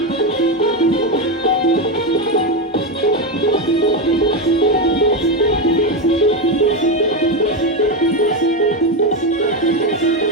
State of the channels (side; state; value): both; normal; correlation 0.12